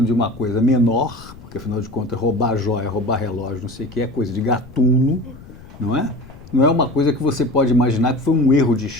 de uma coisa menor, porque, afinal de contas, roubar joia, roubar relógio, não sei o que, é coisa de gatuno, não é? Não é uma coisa que você pode imaginar que foi um erro de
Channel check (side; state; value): left; noise; rumble, 19 dB below the sound